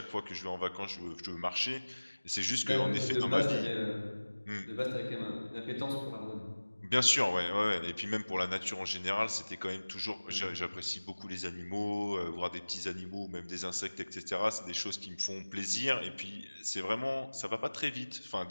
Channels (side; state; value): both; inverted; correlation -1.00